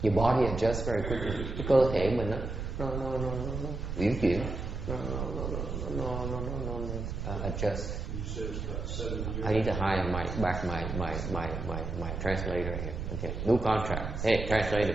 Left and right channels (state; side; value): noise; right; rumble, 5 dB below the sound